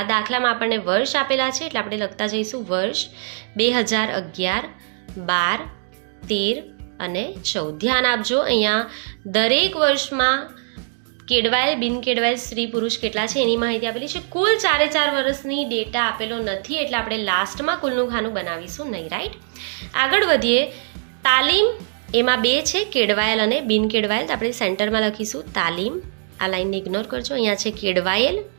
દાખલામાં આપણને વર્ષ આપેલા છે, એટલે આપણે લખતા જઈશું વર્ષ 2011, 12, 13 અને 14. ધ્યાન આપજો, અહીંયા દરેક વર્ષમાં કેળવાયેલ બિન કેળવાયેલ સ્ત્રી પુરુષ કેટલા છે એની માહિતી આપેલી છે. કુલ 4 વર્ષની ડેટા આપેલો નથી, એટલે આપણે લાસ્ટમાં કુલનું ખાનું બનાવીશું નહીં. રાઈટ, આગળ વધીએ. તાલીમ એમાં 2 છે, કેળવાયેલ અને બિન કેળવાયેલ, તો આપણે સેન્ટરમાં લખીશું તાલીમ. આ લાઈનને ઇગ્નોર કરજો, અહીંયા છે કેળવાયેલ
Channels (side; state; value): left; silent; 64 dB below the other